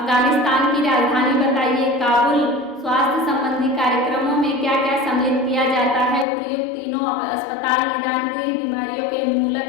की राजधानी बताइए। काबुल। स्वास्थ्य संबंधी कार्यक्रमों में क्या क्या सम्मिलित किया जाता है? उपयुक्त तीनों अस्पताल, निदान गृह, बीमारियों के उन्मूलन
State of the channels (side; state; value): right; drops out; at 6.2 s